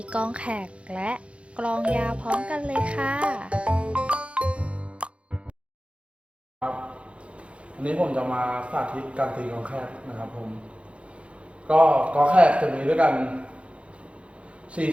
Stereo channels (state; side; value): late; left; 0.060 ms